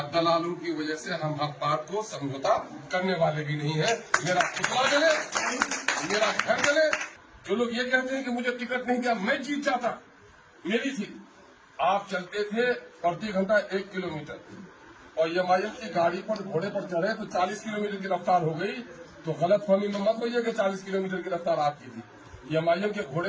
دلالوں کی وجہ سے ہم حق بات کو سمجھوتا کرنے والے بھی نہیں ہیں. میرا پتلا جلے، میرا گھر جلے. جو لوگ یہ کہتے ہیں کہ مجھے ٹکٹ نہیں دیا، میں جیت جاتا، میری تھی. آپ چلتے تھے پرتی گھنٹہ 1 کلومیٹر اور ایم آئی ایم کی گاڑی پر گھوڑے پر چڑھے تو 40 کلومیٹر کی رفتار ہو گئی. تو غلط فہمی میں مت ہوئی ہے کہ 40 کلومیٹر کی رفتار آپ کی تھی. ایم آئی ایم کے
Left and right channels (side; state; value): both; identical; correlation 1.00